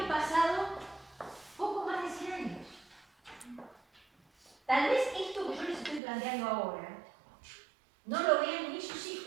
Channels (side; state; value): left; drops out; at 6.0 s